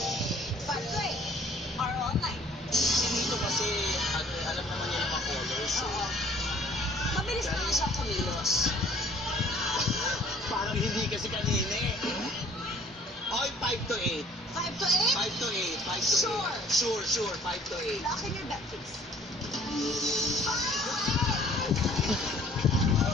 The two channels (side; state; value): both; normal; correlation 0.55